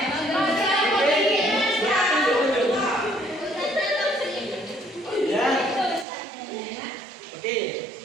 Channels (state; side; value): drops out; left; at 6.1 s